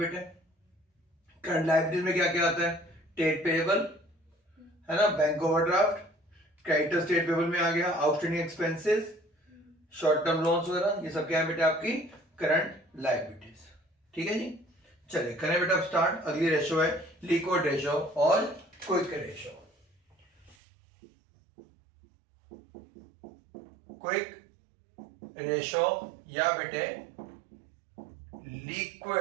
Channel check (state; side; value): drops out; left; at 20.6 s